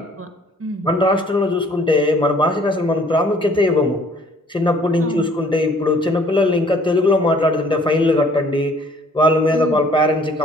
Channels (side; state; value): both; normal; correlation 0.58